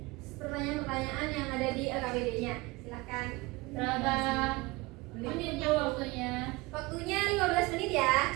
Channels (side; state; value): left; quieter; 22.5 dB